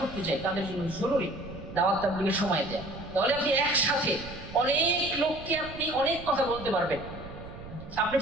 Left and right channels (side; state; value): right; noise; rumble, 14 dB below the sound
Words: করতে চাই, তাদের জন্য জরুরি দাওয়াত তাবলীগের সময় দেয়া। তাহলে আপনি একসাথে অনেক লোককে আপনি অনেক কথা বলতে পারবেন, আপনি